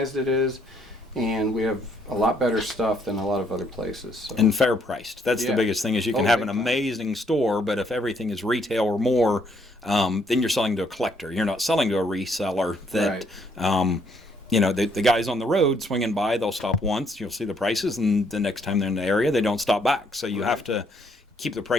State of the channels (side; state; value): both; normal; correlation 0.69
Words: it is. And we have a lot better stuff than a lot of other places. So. And fair priced. That's the Yeah. biggest thing is you can Oh, have an big time. amazing store, but if everything is retail or more, then you're selling to a collector. You're not selling to a reseller that, you know, the guys on the road swinging by, they'll stop once, you'll see the prices, and the next time they're in the area, they don't stop back. So you have to keep the